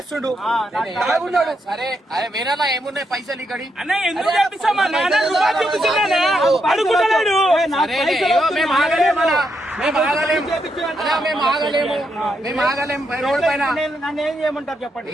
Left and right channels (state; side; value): normal; both; correlation 0.80